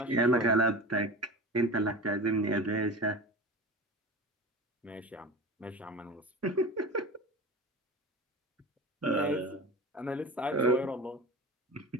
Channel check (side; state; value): both; normal; correlation 0.32